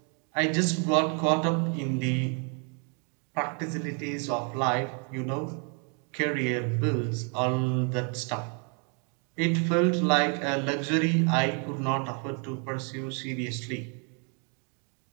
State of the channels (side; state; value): left; quieter; 38.5 dB